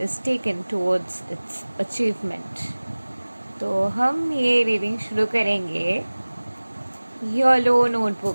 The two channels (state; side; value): inverted; both; correlation -1.00